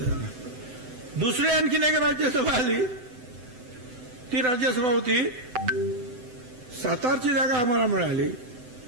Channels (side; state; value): left; late; 7.9 ms